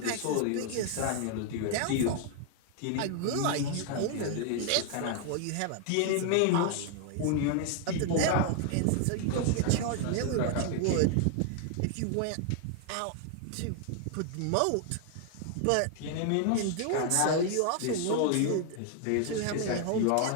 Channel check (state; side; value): different; both; correlation 0.00